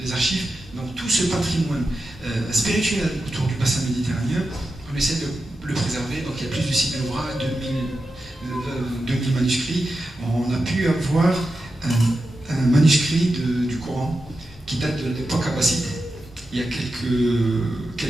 archives. Donc, tout ce patrimoine spirituel autour du bassin méditerranéen, on essaie de le préserver. Donc, il y a plus de 6 000 ouvrages, 2000 manuscrits. On a pu avoir un manuscrit du Coran qui date de l'époque abbasside, il y a quelques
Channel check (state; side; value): normal; both; correlation 0.90